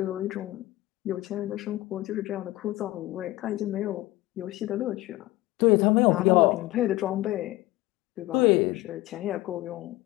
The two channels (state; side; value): quieter; right; 18.2 dB